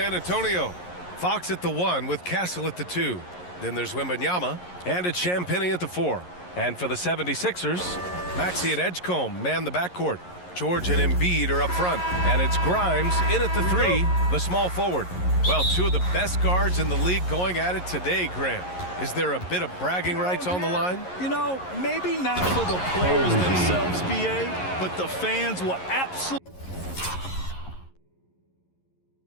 Antonio. Fox at the 1 with Castle at the 2. Then there's Wembanyama and it's Champagnie at the 4. And for the 76ers, Maxey and Edgecombe man the backcourt. George and Embiid are up front. And it's Grimes in at the 3, the small forward. Well, two of the best guards in the league going at it today, Grant. Is there a bit of bragging rights on the line? You know, maybe not for the players themselves, BA, but the fans will absolutely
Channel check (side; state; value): right; late; 11 ms